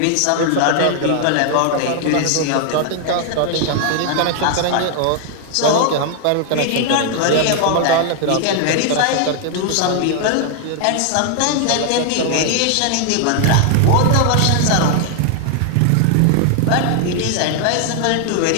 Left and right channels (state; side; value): different; both; correlation 0.00